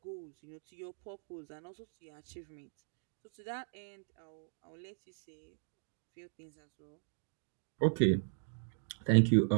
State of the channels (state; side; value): silent; left; digital silence